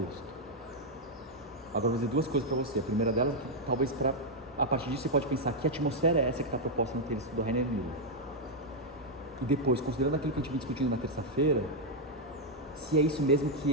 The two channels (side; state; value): both; normal; correlation -0.01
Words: Agora eu vou dizer duas coisas para você. A primeira delas, talvez a partir disso você pode pensar que atmosfera é essa que está proposta no texto do Rainer Miller. E depois, considerando aquilo que a gente vem discutindo na terça-feira, se é isso mesmo